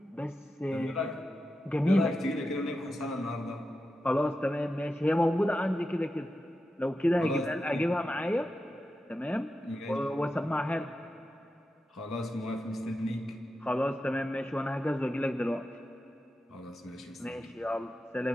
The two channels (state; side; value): normal; both; correlation 0.90